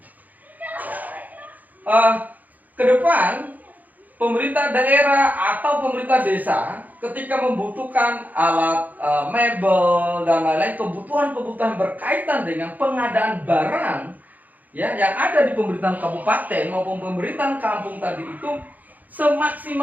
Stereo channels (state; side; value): late; left; 0.081 ms